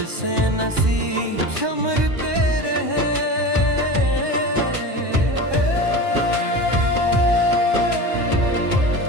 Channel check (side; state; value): left; late; 1.2 ms